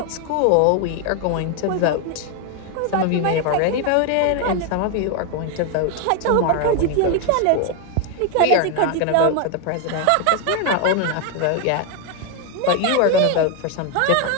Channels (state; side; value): different; both; correlation 0.01